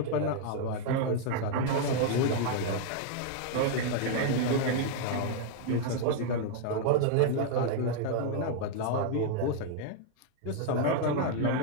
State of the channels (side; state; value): both; different; correlation 0.00